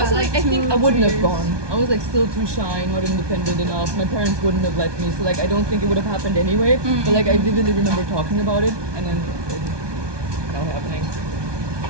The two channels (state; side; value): late; left; 1.2 ms